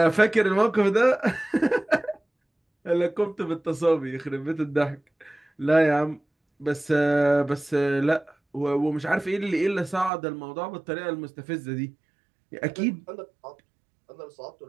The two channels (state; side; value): drops out; left; at 10.1 s